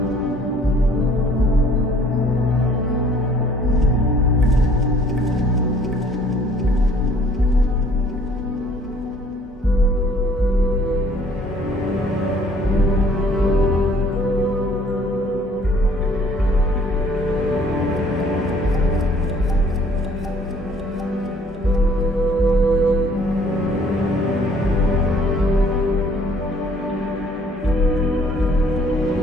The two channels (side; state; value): both; normal; correlation 0.58